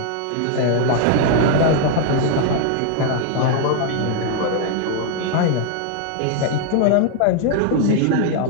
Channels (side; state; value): both; different; correlation 0.00